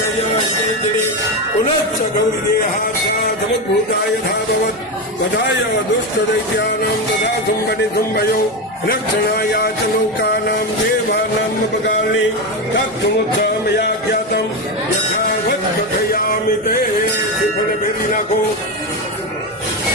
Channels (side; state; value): both; normal; correlation 0.14